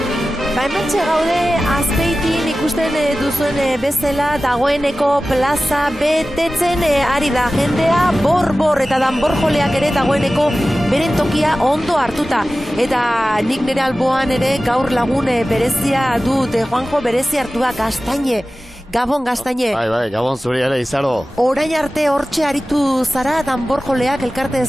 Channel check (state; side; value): normal; both; correlation 0.96